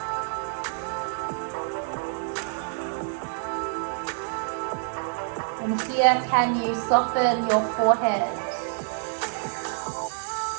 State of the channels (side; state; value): left; silent; digital silence